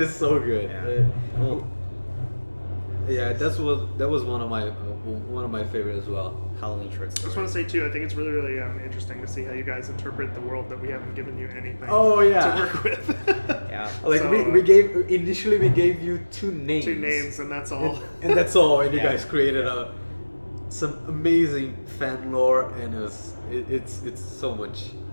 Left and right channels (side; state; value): both; inverted; correlation -1.00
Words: so good. Yeah. Cool. Yeah, that was one of my favorite as well. Halloween short I just story. want to say too, I think it's really, really interesting to see how you guys interpret the world that we haven't given you anything Oh, yeah. to work with. Yeah. Like So, we gave initially we gave you 2 names. 2 names and that's all. And that's all. And you Yeah. guys created some amazing fan lore, and it's so much